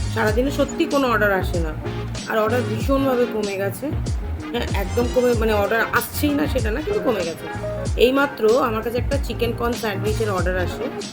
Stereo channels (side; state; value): both; identical; correlation 1.00